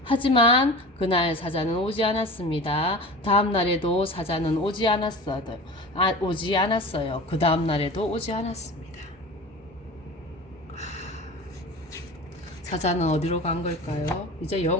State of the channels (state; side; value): normal; both; correlation 0.35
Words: 하지만 그날 사자는 오지 않았습니다. 다음 날에도 사자는 오지 않았어요. 그 다음 날에도 오지 않았습니다. 사자는 어디로 간 걸까요? 이제